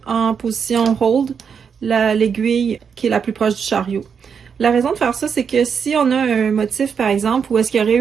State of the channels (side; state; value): left; quieter; 6.7 dB